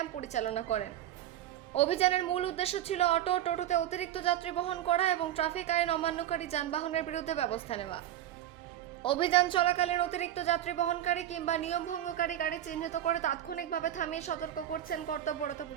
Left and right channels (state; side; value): quieter; left; 12.1 dB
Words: পরিচালনা করেন। অভিযানের মূল উদ্দেশ্য ছিল অটো টোটোতে অতিরিক্ত যাত্রী বহন করা এবং ট্রাফিক আইন অমান্যকারী যানবাহনের বিরুদ্ধে ব্যবস্থা নেওয়া। অভিযান চলাকালীন অতিরিক্ত যাত্রী বহনকারী কিংবা নিয়ম ভঙ্গকারী গাড়ি চিহ্নিত করে তাৎক্ষণিকভাবে থামিয়ে সতর্ক করছেন কর্তব্যরত